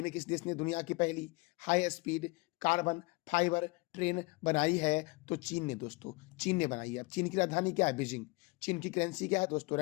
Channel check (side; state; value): right; quieter; 25.1 dB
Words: में किस देश ने दुनिया की पहली high speed carbon fibre train बनाई है? तो चीन ने दोस्तों, चीन ने बनाई है। चीन की राजधानी क्या है? बीजिंग। चीन की करेंसी क्या है दोस्तों?